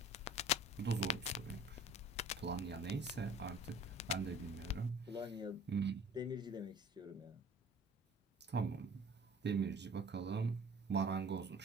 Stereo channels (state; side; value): normal; both; correlation 0.47